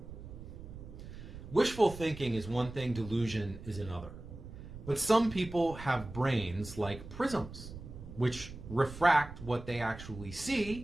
Wishful thinking is one thing, delusion is another. But some people have brains like prisms, which refract what they actually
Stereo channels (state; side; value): noise; right; rumble, 13 dB below the sound